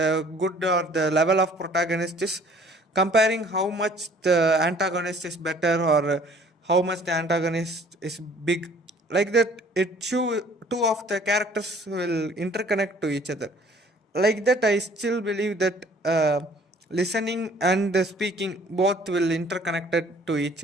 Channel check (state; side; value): normal; both; correlation 0.55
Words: good or the level of protagonist is comparing how much the antagonist is better, or how much the antagonist is big. Like that, it show two of the characters will interconnect to each other. Like that, I still believe that listening and speaking both will interconnected to each